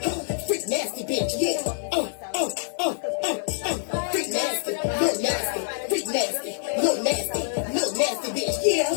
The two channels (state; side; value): silent; right; 61 dB below the other